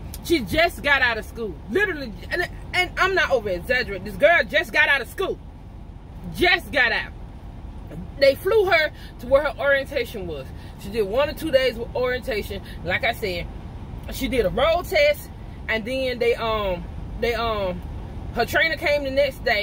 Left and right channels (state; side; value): identical; both; correlation 1.00